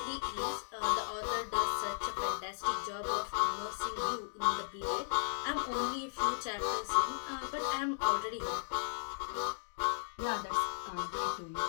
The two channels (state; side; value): silent; right; digital silence